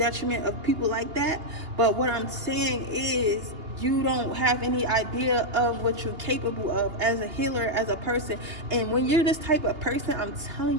of people like that. But what I'm saying is, you don't have any idea of what you're capable of as a healer, as a person. And when you're this type of person, I'm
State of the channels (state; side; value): late; left; 2.8 ms